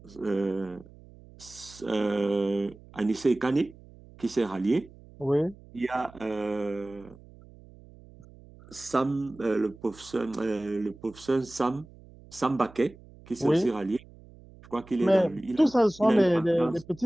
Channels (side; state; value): right; noise; hum, 22 dB below the sound